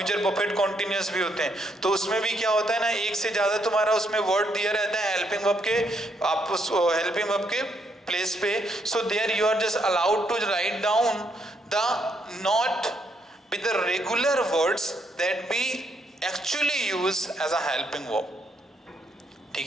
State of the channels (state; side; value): normal; both; correlation 0.74